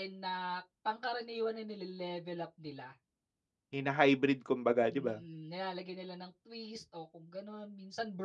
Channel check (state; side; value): identical; both; correlation 1.00